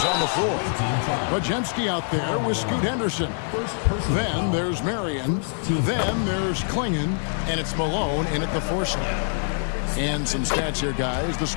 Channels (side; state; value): right; silent; 62 dB below the other